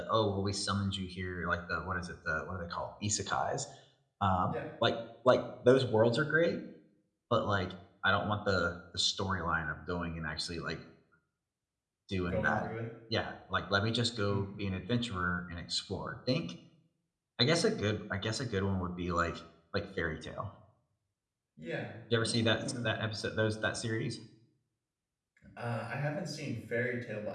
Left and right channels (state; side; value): identical; both; correlation 1.00